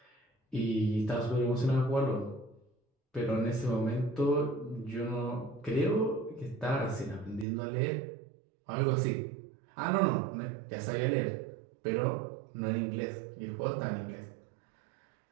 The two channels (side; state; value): left; drops out; at 7.5 s